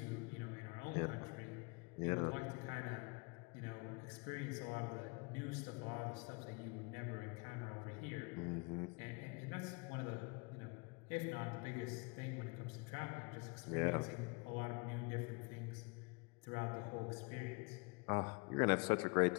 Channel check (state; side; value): quieter; right; 29.8 dB